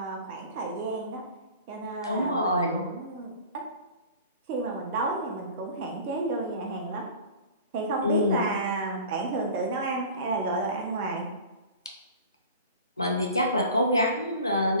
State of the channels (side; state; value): both; inverted; correlation -0.41